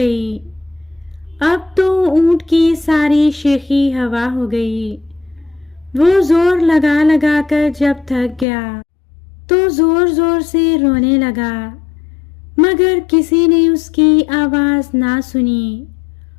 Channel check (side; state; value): right; drops out; at 8.5 s